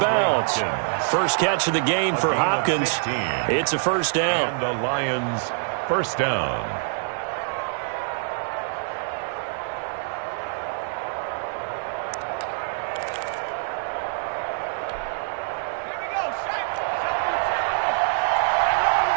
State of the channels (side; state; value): left; silent; 62 dB below the other